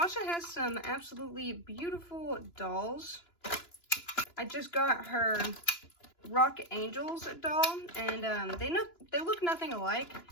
has some absolutely beautiful dolls. I just got her Rock Angels doll, and they look nothing alike.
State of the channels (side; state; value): right; late; 2.9 ms